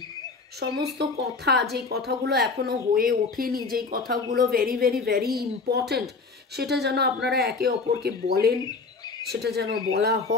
সমস্ত কথা, যেই কথাগুলো এখনো হয়ে ওঠেনি, যেই কথাগুলো ভেরি ভেরি ভেরি ইম্পর্ট্যান্ট, সেটা যেন আপনারা একে অপরকে বলেন, সেটা যেন বলা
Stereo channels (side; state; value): right; quieter; 4.3 dB